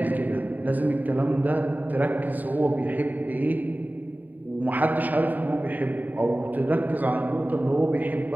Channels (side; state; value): left; late; 0.085 ms